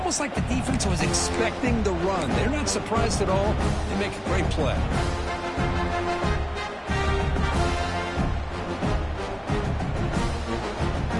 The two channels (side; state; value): both; identical; correlation 1.00